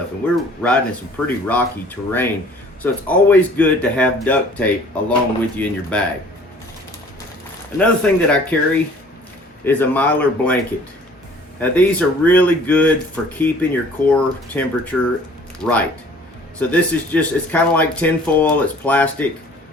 And we're riding in some pretty rocky terrain, so it's always good to have duct tape along with you in your bag. Another thing that I carry is a Mylar blanket. Now these are really good for keeping your core temperature right. So this is just, it's kind of like tin foil, it's plastic.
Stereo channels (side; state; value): both; normal; correlation 0.52